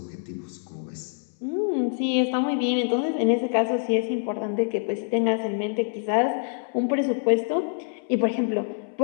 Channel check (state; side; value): silent; right; 61 dB below the other